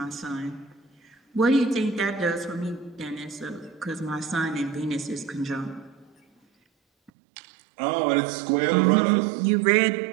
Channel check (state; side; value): drops out; left; at 7.1 s